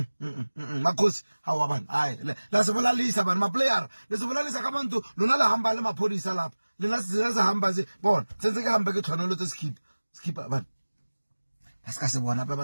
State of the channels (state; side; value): inverted; both; correlation -1.00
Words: makhosi hawa bana hayi la sibolalisa bana ma player lesibolalisa ka bantu lona la hamba le maphodisa lapha lena siza hamba ze bona senze ke hamba ke tshwanelo tse skip bana asika se bona ba